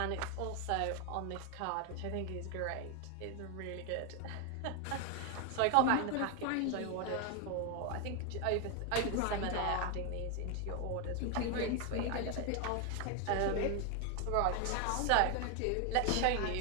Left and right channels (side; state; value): both; different; correlation 0.01